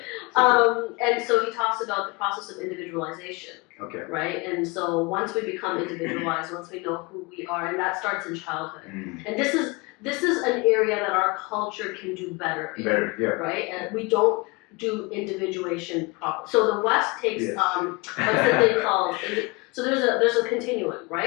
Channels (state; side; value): quieter; right; 26.9 dB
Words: And so he talks about the process of individualization. Okay. Right, and so once we become individualized, once we know who we are, and that starts in childhood, and this is an area that our culture can do better in, right? And we don't do individuation properly. So the West takes what's the thing called? So there's a continuum,